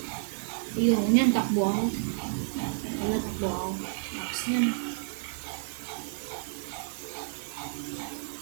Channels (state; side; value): silent; left; digital silence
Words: Ayun, yan, takbo ako. Wala, takbo ako. Tapos yan.